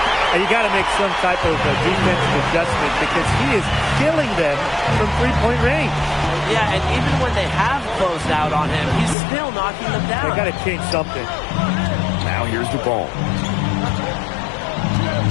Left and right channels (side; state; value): right; drops out; at 9.2 s